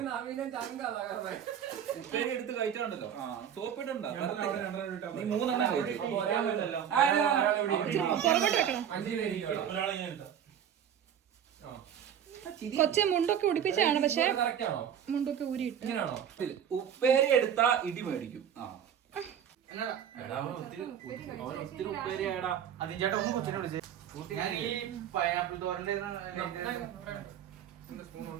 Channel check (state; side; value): quieter; left; 9.1 dB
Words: എടുത്ത് കഴിച്ചിട്ടുണ്ടല്ലോ, സോപ്പിട്ടുണ്ടോ? കൊച്ചെ മുണ്ടൊക്കെ ഉടിപ്പിച്ചാണ്, പക്ഷെ മുണ്ടൊക്കെ ഊരിയിട്ട്. ഉപ്പേരി എടുത്താ ഇടി മേടിക്കും. ഒത്തിരി ഉപ്പേരി ആയടാ. അതിന് ചേട്ടാ ഒന്ന് കൊച്ചിനെ വിളിച്ചേ. ഞാൻ ഈ പൈനാപ്പിൾ തോരന്റെ